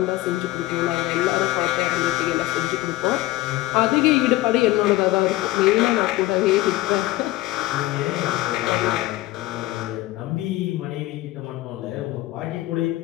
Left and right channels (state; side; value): quieter; right; 17.4 dB